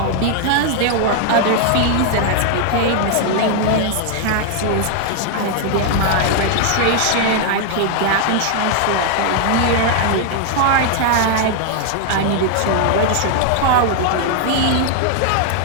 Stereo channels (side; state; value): both; different; correlation 0.00